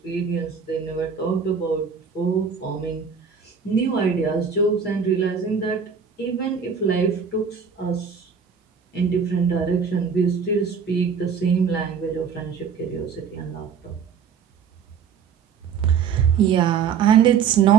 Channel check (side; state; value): left; quieter; 6.6 dB